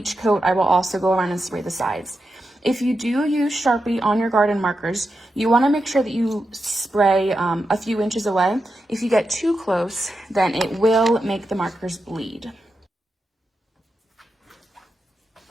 coat, I will also go around and spray the sides. If you do use Sharpie on your garden markers, you want to make sure that you spray a few inches away. If you get too close, then it will make the markers bleed.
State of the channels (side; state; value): both; normal; correlation 0.88